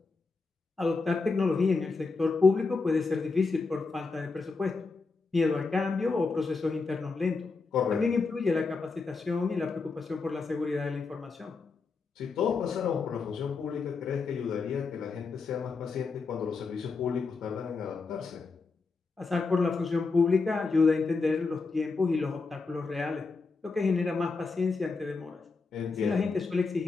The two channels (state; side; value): quieter; right; 4.3 dB